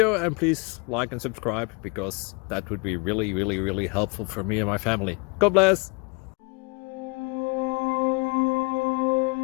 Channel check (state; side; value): quieter; right; 30.4 dB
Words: and please like and subscribe, because that would be really helpful for me and my family. God bless!